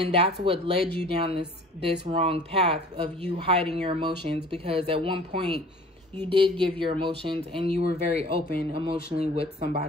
that's what led you down this wrong path of you hiding your emotions, because at one point you did give your emotions and you were very open emotionally with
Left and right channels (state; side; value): normal; both; correlation 0.47